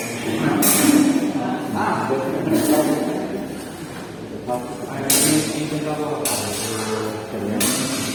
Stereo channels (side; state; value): both; identical; correlation 1.00